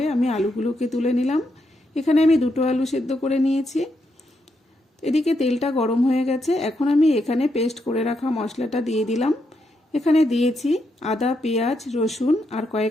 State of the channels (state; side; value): normal; both; correlation 0.81